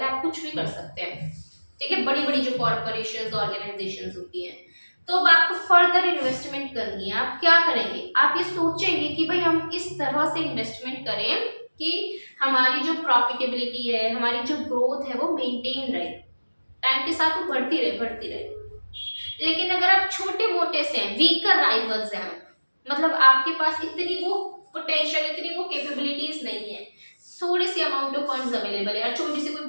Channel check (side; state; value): both; inverted; correlation -1.00